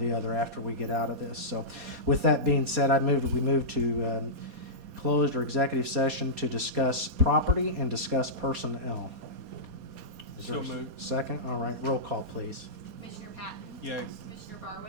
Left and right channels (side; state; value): left; late; 4.2 ms